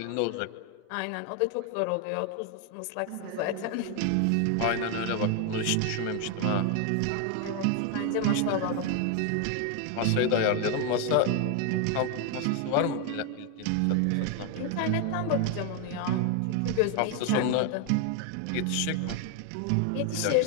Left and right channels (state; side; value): different; both; correlation 0.01